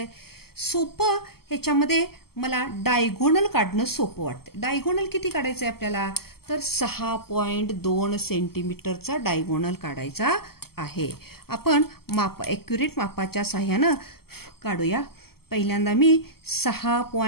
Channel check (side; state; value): right; late; 0.95 ms